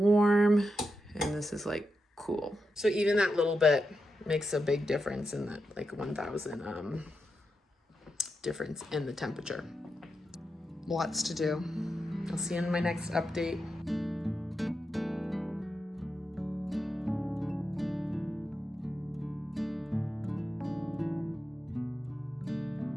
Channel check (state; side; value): normal; both; correlation 0.87